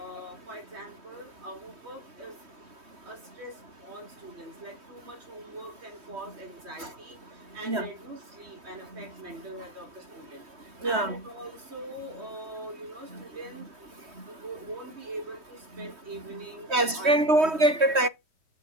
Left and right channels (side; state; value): left; late; 3.2 ms